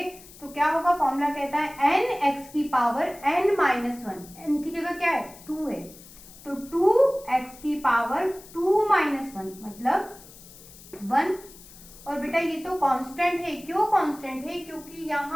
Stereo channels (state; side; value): noise; left; hiss, 20 dB below the sound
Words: तो क्या होगा, फॉर्मूला कहता है n x की पावर n माइनस 1, n की जगह क्या है 2 है, तो 2x की पावर 2 माइनस 1 मतलब 1। और बेटा ये तो कांस्टेंट है, क्यों कांस्टेंट है, क्योंकि